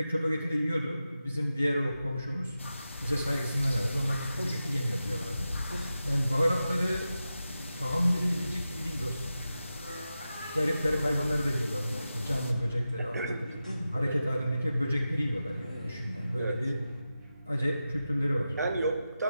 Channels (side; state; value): both; inverted; correlation -0.92